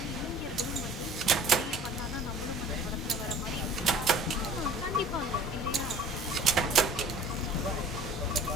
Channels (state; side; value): normal; both; correlation 0.47